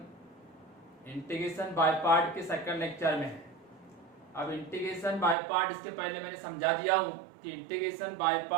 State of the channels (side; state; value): left; drops out; at 5.4 s